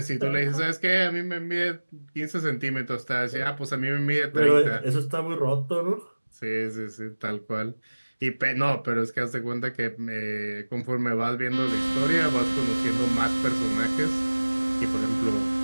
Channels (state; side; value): inverted; both; correlation -1.00